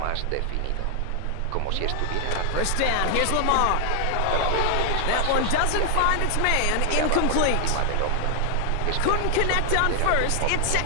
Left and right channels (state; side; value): different; both; correlation 0.00